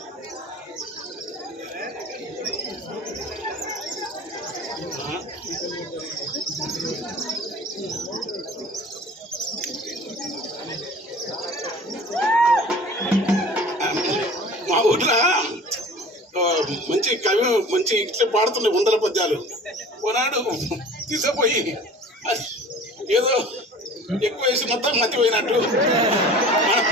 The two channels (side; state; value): both; normal; correlation 0.43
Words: మా ఊర్లో మంచి కవి మంచి ఇట్లా పాడుతుండే వందల పద్యాలు ఓనాడు తీసుకుపోయి ఏదో ఎక్కువ వేసి మొత్తం మర్చిపోయినట్టు